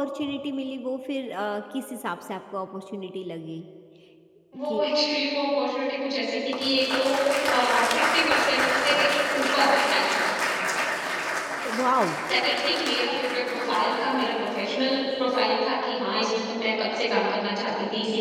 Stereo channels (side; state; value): both; identical; correlation 1.00